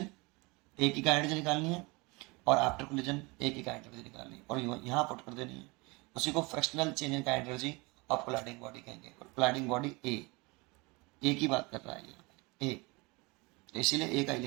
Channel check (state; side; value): quieter; left; 26.1 dB